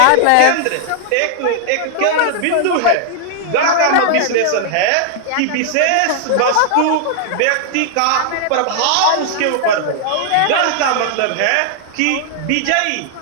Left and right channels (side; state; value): both; different; correlation 0.00